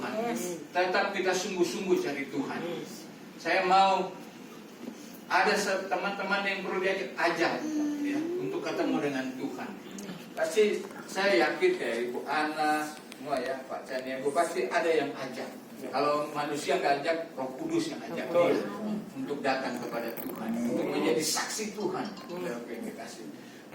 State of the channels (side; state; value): both; identical; correlation 1.00